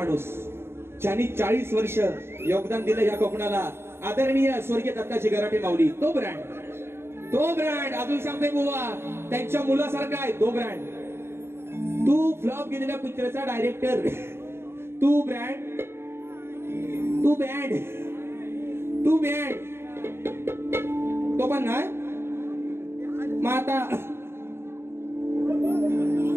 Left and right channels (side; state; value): left; late; 0.12 ms